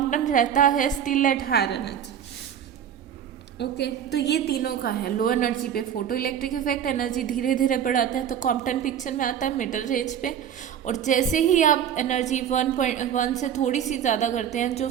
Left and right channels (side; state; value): left; quieter; 9.2 dB